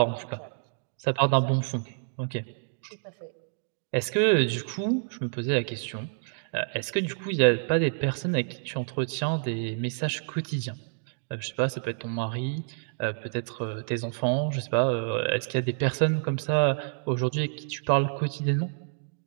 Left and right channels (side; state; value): left; silent; digital silence